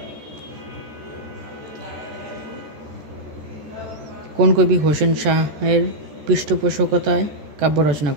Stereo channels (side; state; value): left; late; 14 ms